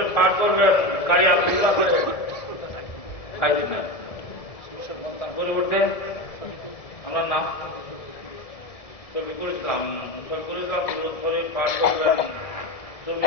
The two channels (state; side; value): late; right; 1.7 ms